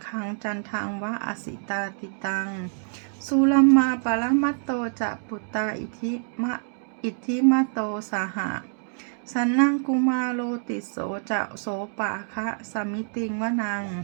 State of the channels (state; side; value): silent; left; 61 dB below the other